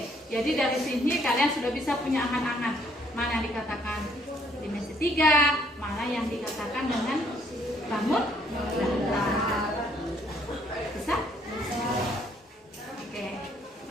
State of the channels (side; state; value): both; normal; correlation 0.66